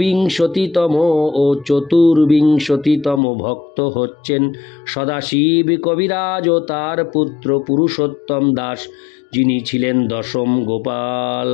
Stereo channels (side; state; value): right; drops out; at 3.2 s